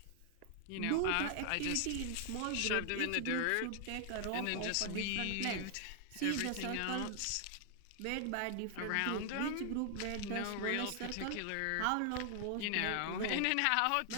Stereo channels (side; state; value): both; different; correlation 0.00